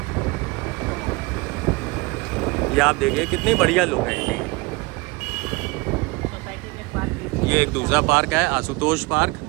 ये आप देखिए कितनी बढ़िया लुक है। सोसाइटी के पार्क है। ये एक दूसरा पार्क है, आशुतोष पार्क।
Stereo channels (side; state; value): left; quieter; 25.0 dB